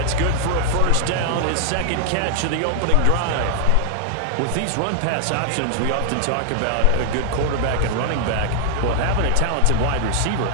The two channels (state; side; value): different; both; correlation 0.00